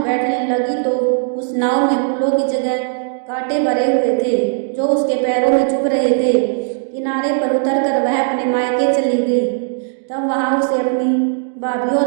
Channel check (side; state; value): left; silent; digital silence